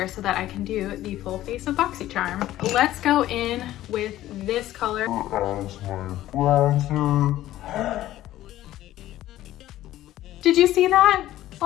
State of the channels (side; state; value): right; quieter; 14.3 dB